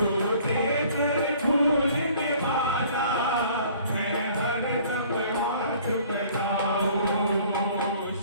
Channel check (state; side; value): inverted; both; correlation -0.54